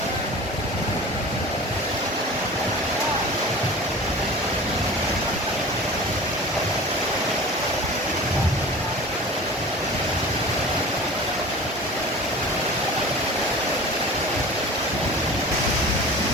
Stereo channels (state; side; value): normal; both; correlation 0.38